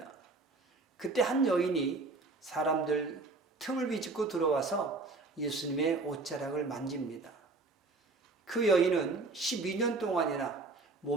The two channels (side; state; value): left; quieter; 3.6 dB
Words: 그때 한 여인이 사람들 틈을 비집고 들어와서 예수님의 옷자락을 만집니다. 그 여인은 12년 동안이나